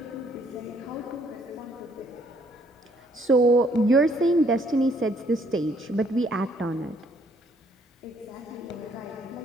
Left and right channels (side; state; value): both; normal; correlation 0.66